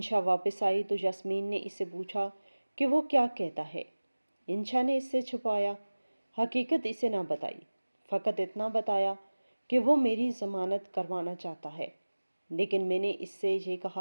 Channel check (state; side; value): inverted; both; correlation -1.00